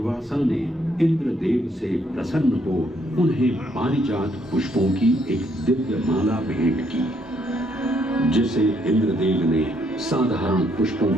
ने इंद्रदेव से प्रसन्न हो उन्हें पारिजात पुष्पों की एक दिव्य माला भेंट की, जिसे इंद्रदेव ने साधारण पुष्पों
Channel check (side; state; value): both; normal; correlation 0.71